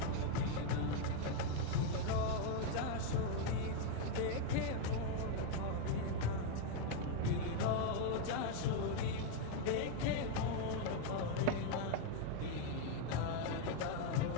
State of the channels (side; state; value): both; different; correlation 0.01